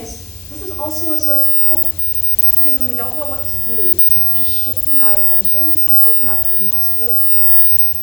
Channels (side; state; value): left; noise; hiss, 22 dB below the sound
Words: this is also a source of hope, because when we don't know what to do, just shifting our attention can open up new possibilities.